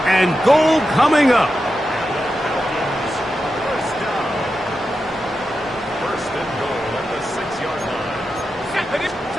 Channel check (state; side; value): normal; both; correlation 0.89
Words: and goal coming up.